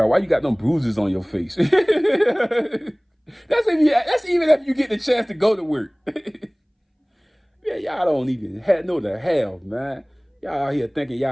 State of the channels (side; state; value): both; identical; correlation 1.00